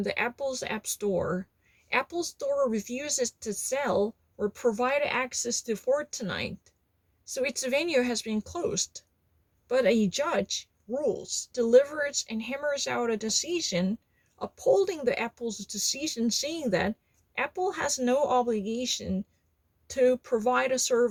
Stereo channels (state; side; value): identical; both; correlation 1.00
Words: the Apple's App Store. Apple Store refuses to sell or provide access to Fortnite, so its venue has been closed. But a judge rules, delivers, and hammers out a decision upholding the Apple's decision, saying that Apple has no obligation to provide a